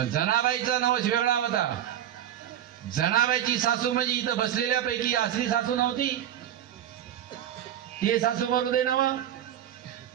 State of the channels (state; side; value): quieter; left; 10.9 dB